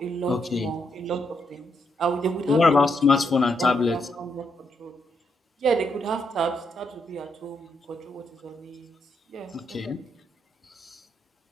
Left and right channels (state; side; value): normal; both; correlation 0.79